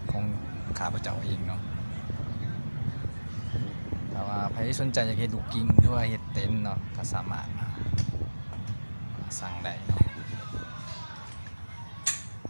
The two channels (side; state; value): both; inverted; correlation -1.00